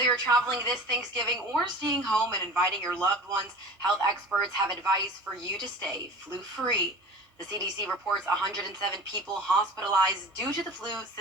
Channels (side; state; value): both; normal; correlation 0.38